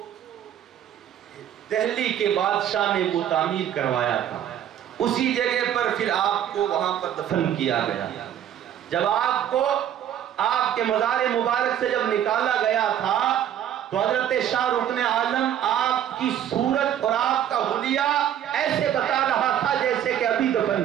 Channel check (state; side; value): quieter; left; 10.4 dB